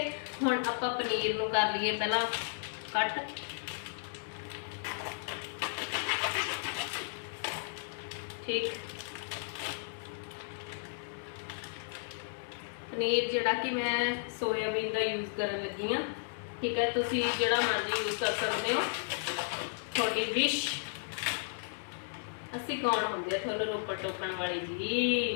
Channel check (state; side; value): silent; right; 55 dB below the other